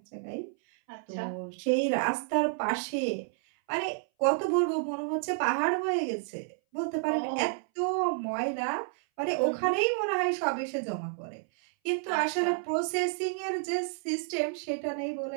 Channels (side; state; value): left; silent; 58 dB below the other